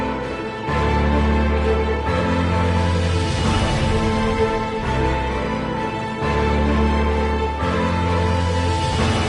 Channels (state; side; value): identical; both; correlation 1.00